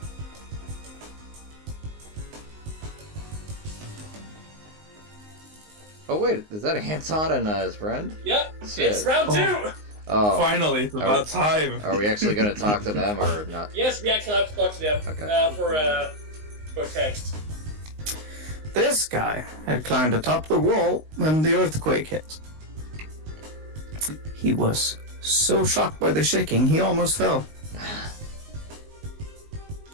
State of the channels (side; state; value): left; late; 19 ms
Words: Oh wait, is that Anton and his friend? Yep. Shit. It's round two. Oh. Finally, it's about time. Are we actually gonna talk to them or not? Yes, we actually have to talk to them. Okay. For text. This guy had climbed atop the wall when the earthquake hit. He was so shocked by the shaking, he almost fell.